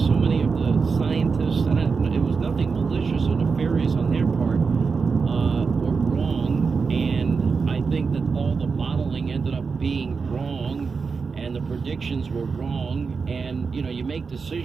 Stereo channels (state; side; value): quieter; left; 5.1 dB